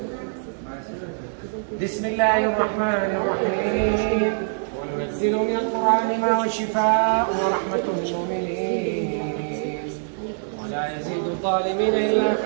بسم الله الرحمن الرحيم. وننزل من القرآن ما هو شفاء ورحمة للمؤمنين ولا يزيد الظالمين إلا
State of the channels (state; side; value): silent; left; digital silence